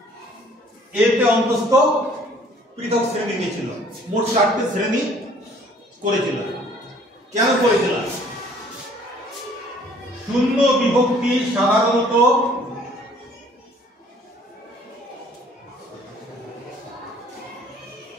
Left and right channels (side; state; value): both; normal; correlation 0.57